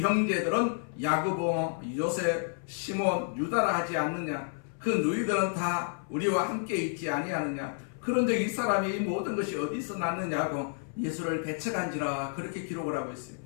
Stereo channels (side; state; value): right; silent; 58 dB below the other